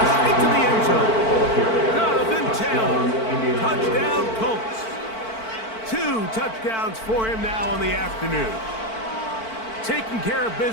into the end zone. Jonathan Taylor, touchdown Colts. 2 touchdowns for him now on the afternoon. Taking care of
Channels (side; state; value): right; late; 4.5 ms